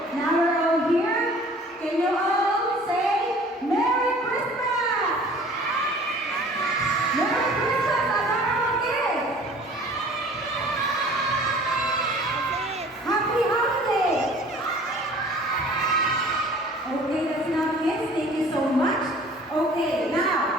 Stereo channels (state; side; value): normal; both; correlation 0.49